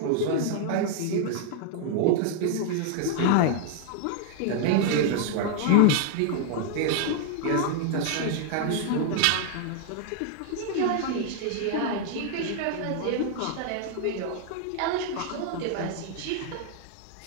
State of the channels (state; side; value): different; both; correlation 0.00